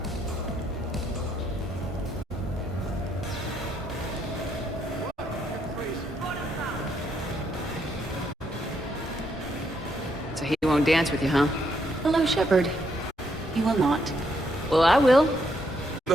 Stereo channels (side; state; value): both; normal; correlation 0.75